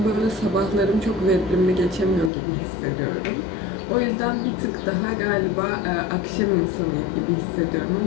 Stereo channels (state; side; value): drops out; right; at 2.3 s